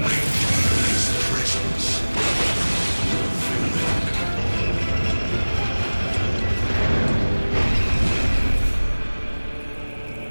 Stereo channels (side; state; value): both; inverted; correlation -1.00